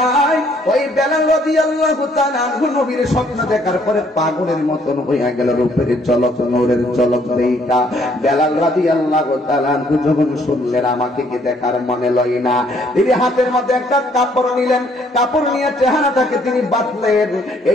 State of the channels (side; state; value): both; normal; correlation 0.65